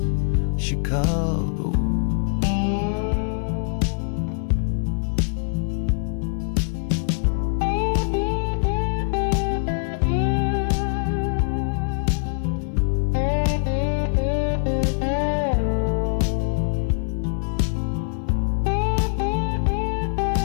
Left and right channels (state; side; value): silent; right; 63 dB below the other